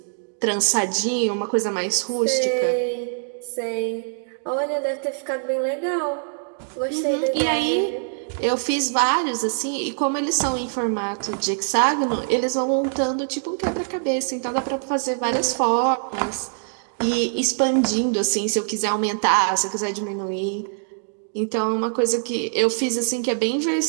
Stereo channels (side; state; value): left; silent; digital silence